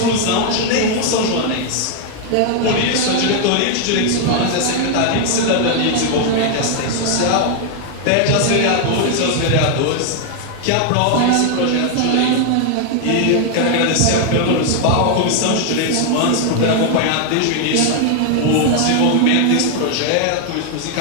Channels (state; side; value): different; both; correlation 0.00